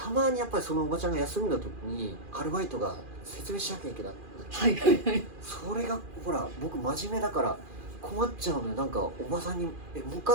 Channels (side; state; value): left; late; 2.4 ms